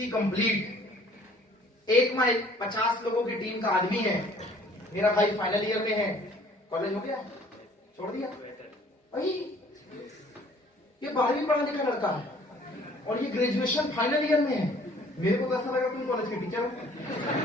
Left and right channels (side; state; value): both; normal; correlation 0.56